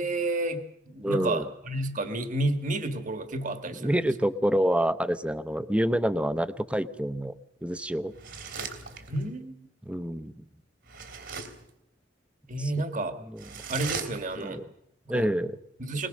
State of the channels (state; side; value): normal; both; correlation 0.75